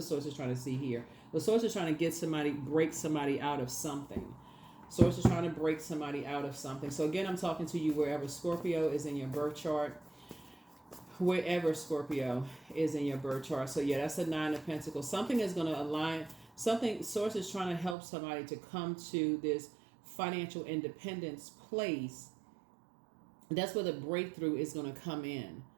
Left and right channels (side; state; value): left; drops out; at 17.9 s